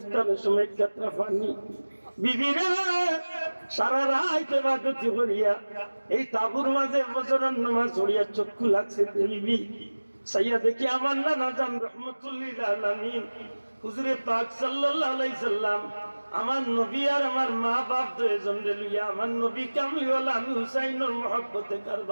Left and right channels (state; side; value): inverted; both; correlation -1.00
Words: সময় কাতরা পানি। বিবি রে সারা রাত ইবাদত করিয়া এই তাবুর মাঝে ফজরের নামাজ পড়িয়া চক্ষু লাগছে বিবি। সাইয়া দেখি আমার নানা জান রহমতুল্লিল আলামিন হুজুরে পাক সাল্লাল্লাহু আলাইহি সাল্লাম আমার নবী আর আমার মা বাপ দুইজন রে লইয়া আমার নবী কামলিওয়ালা আমি হুসাইনের মহব্বতে